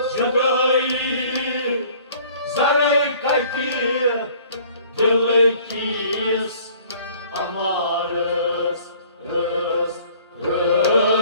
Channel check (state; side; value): inverted; both; correlation -0.54